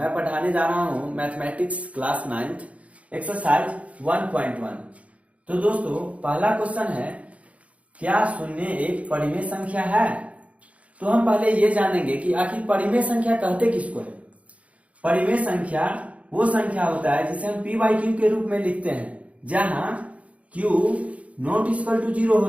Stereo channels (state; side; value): late; left; 0.065 ms